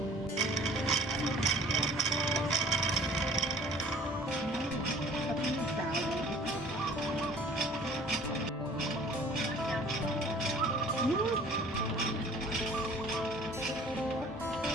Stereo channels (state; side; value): normal; both; correlation 0.51